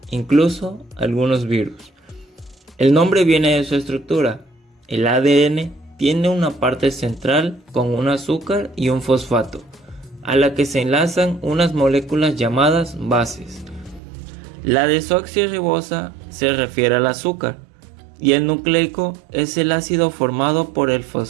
incluso algunos virus. El nombre viene de su estructura. El ADN tiene una parte central con un azúcar y un fosfato, a la que se enlazan unas moléculas llamadas bases. La desoxirribosa se refiere al azúcar y el nucleico es el ácido formado por el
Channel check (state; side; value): drops out; left; at 14.0 s